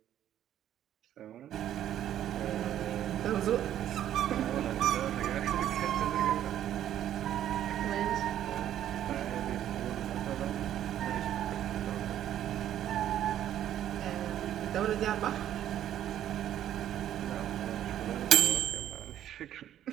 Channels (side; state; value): left; quieter; 11.3 dB